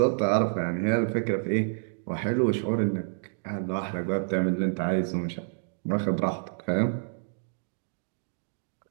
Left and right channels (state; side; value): silent; left; digital silence